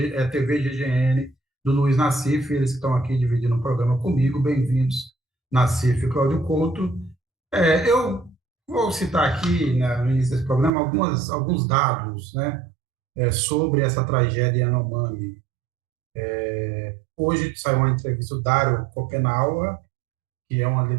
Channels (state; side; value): drops out; left; at 10.7 s